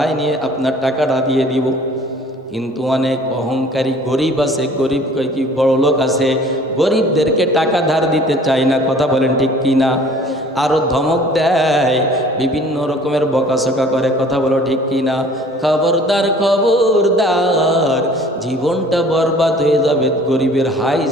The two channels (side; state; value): both; normal; correlation 0.51